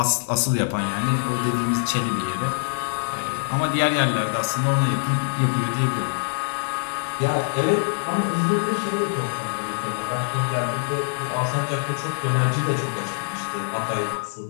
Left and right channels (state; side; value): silent; right; digital silence